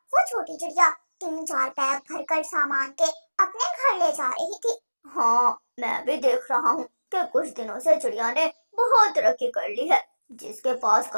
छोटी चिड़िया 3-4 बैग भरकर सामान के अपने घर ले जा रही थी। हाँ, मैं भी देख रहा हूँ कि कुछ दिनों से चिड़िया ने बहुत तरक्की कर ली है। जिसके पास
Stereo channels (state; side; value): inverted; both; correlation -1.00